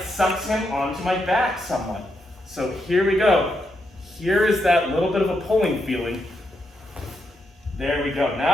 sucks him onto my back somewhat. So here we go. Here is that little bit of a pulling feeling. There we go.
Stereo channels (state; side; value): normal; both; correlation 0.81